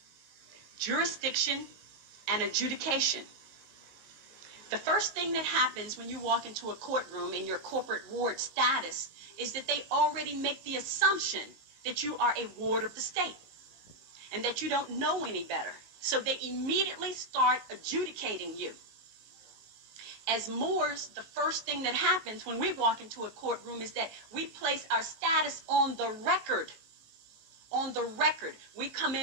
jurisdiction, and adjudication. The first thing that happens when you walk into a courtroom in your corporate ward status is that they already make the assumption that you are a ward of the state and that you don't know any better. So they immediately start adjudicating you. As Moors, the first thing that happens when we walk into a courtroom is that we place our status on the record. On the record. We come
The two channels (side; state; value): left; late; 19 ms